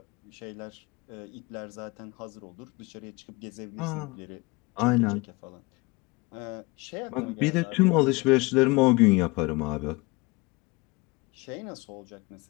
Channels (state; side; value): quieter; right; 24.6 dB